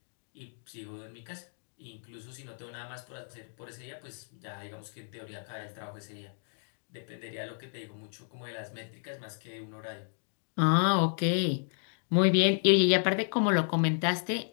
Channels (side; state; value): right; silent; digital silence